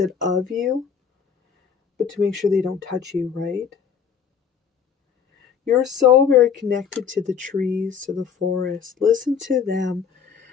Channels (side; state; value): right; quieter; 7.0 dB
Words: of you, but to make sure they don't touch you, right? You're so very connected to the trees, to the forest. Listen to them